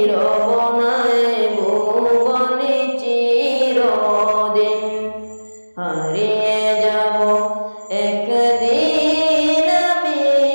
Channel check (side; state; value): both; inverted; correlation -1.00